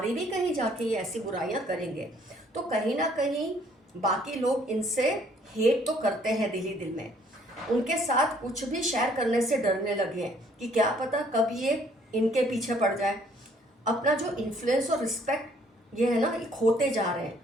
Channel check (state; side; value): normal; both; correlation 0.62